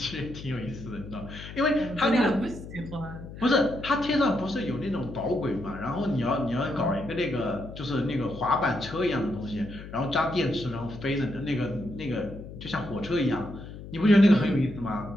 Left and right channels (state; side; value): noise; left; hum, 13 dB below the sound